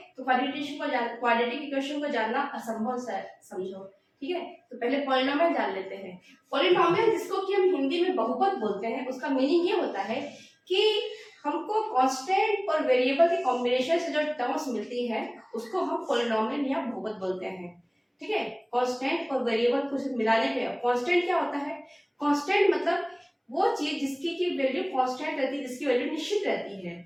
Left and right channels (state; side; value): identical; both; correlation 1.00